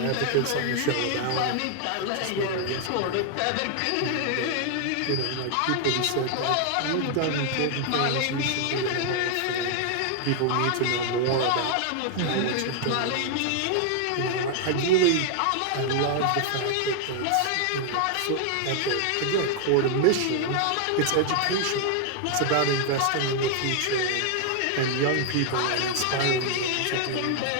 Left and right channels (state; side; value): different; both; correlation 0.00